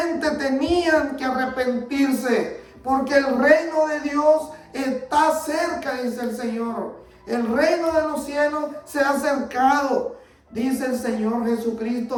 tenían que arrepentirse, porque el reino de Dios está cerca, dice el Señor. El reino de los cielos se ha acercado, dice el Señor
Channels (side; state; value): both; identical; correlation 1.00